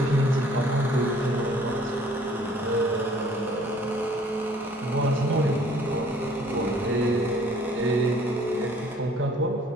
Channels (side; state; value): both; normal; correlation 0.56